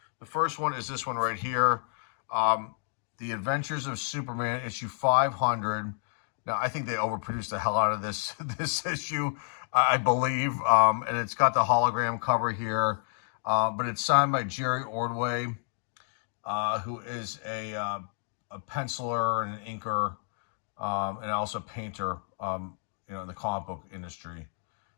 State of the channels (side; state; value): right; silent; 58 dB below the other